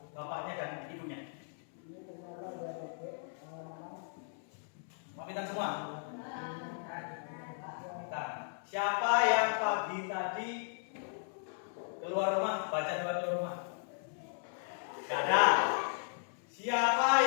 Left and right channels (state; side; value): silent; right; 54 dB below the other